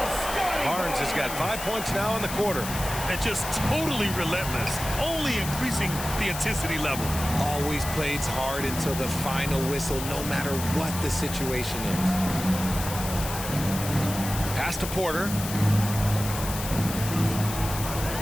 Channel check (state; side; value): noise; left; hiss, 8 dB below the sound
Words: Barnes has got 5 points now in the quarter. And just totally relentless, only increasing the intensity level. Always plays hard until the final whistle, no matter what the situation is. Pass to Porter.